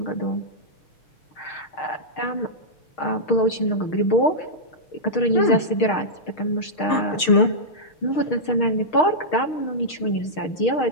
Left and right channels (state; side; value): late; right; 6.6 ms